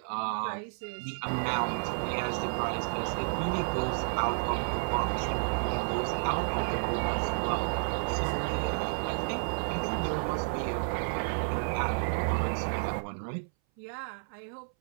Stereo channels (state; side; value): silent; left; 57 dB below the other